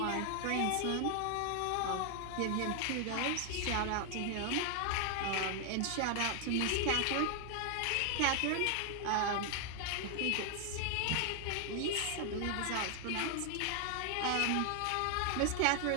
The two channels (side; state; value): both; different; correlation 0.00